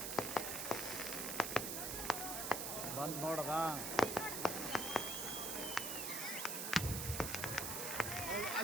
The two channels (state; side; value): noise; right; hiss, 2 dB below the sound